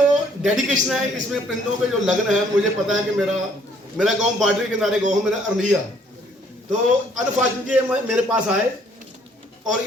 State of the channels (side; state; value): both; normal; correlation 0.63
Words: डेडिकेशन है, इसमें परिंदों पे जो लगन है, मुझे पता है कि मेरा गांव बॉर्डर के किनारे गाँव, मेरा अरनिया। तो अनफॉर्चुनेटली मेरे पास आए और